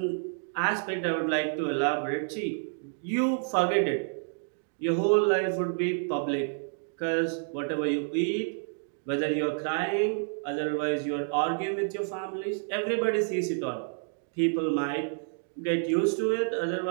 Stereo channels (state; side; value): silent; left; digital silence